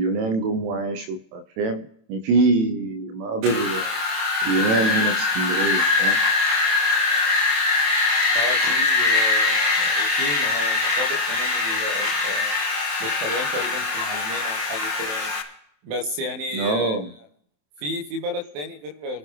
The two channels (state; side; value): late; left; 27 ms